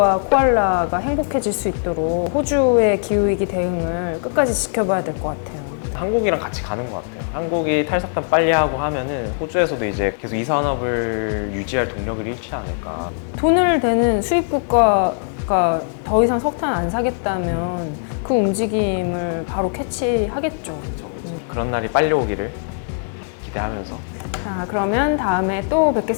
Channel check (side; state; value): right; silent; digital silence